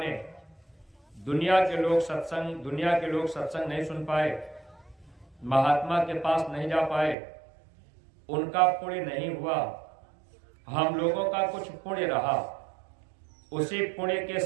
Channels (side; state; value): left; drops out; at 7.2 s